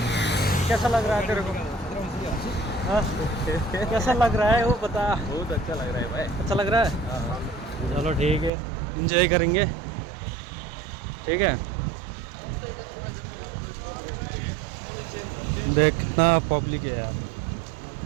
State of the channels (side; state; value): left; drops out; at 8.5 s